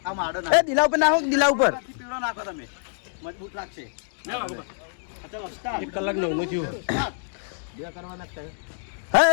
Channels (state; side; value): silent; right; digital silence